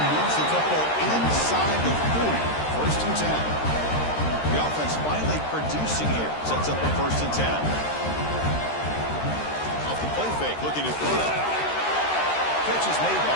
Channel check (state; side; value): late; right; 13 ms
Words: Moves the football inside the 40. 1st and 10. The offense finally producing here. Sets up a 1st and 10. Off the play fake. Looking to throw. Catch is made